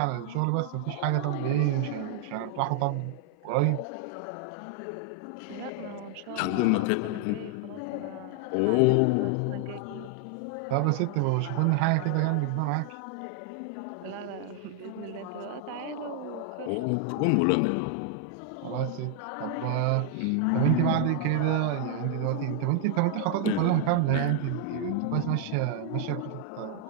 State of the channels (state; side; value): different; both; correlation 0.00